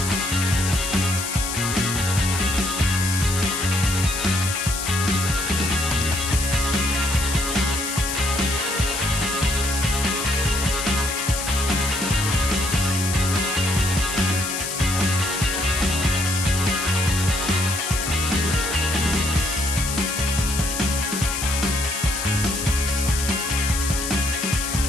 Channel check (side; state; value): left; noise; hiss, 4 dB below the sound